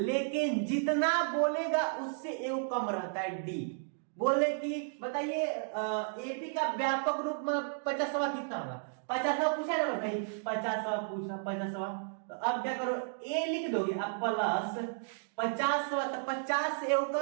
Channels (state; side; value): silent; left; digital silence